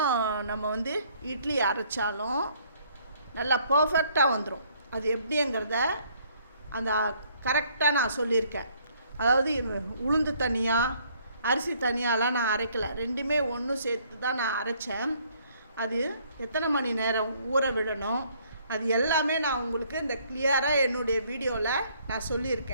நம்ம இட்லி அரைச்சாலும் நல்லா பர்ஃபெக்டாக வந்துடும். அது எப்படிங்கிறத அந்த கரெக்டாக நான் சொல்லியிருக்கேன். அதாவது உளுந்து தனியாக அரிசி தனியாலாம் நான் அரைக்கலை, ரெண்டுமே ஒன்று சேர்த்து தான் நான் அரைச்சேன். அது எத்தனை மணி நேரம் ஊற விடணும் அது எல்லாமே நான் உங்களுக்கு இந்த கிளியராக என்னுடைய வீடியோவில் நான்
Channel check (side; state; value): both; inverted; correlation -0.63